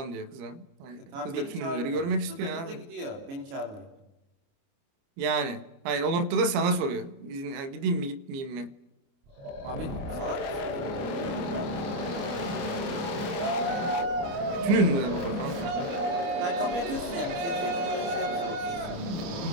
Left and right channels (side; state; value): left; late; 29 ms